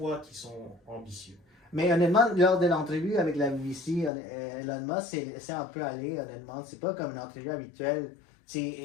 qui sont ambitieux. Mais honnêtement, lors de l'entrevue avec la BBC, Elon Musk c'est un peu allé, honnêtement. C'est pas comme une entrevue habituelle.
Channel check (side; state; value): right; drops out; at 4.1 s